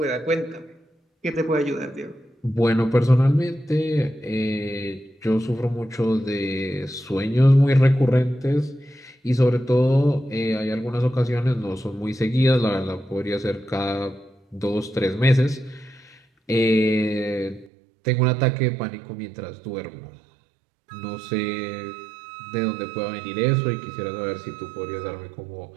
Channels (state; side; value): drops out; left; at 17.7 s